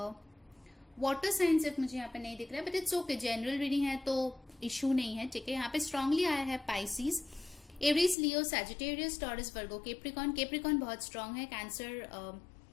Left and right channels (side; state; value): right; drops out; at 8.2 s